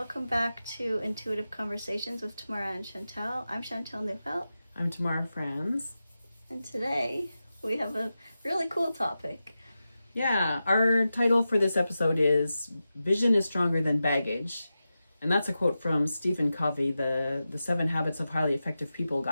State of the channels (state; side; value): inverted; both; correlation -0.92